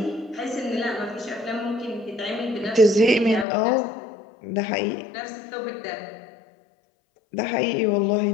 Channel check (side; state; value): right; drops out; at 3.5 s